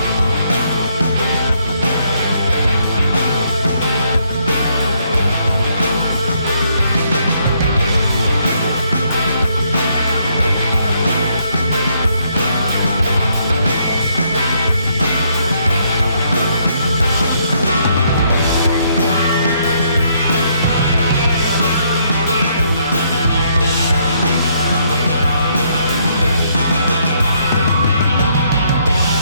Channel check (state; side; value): inverted; both; correlation -0.72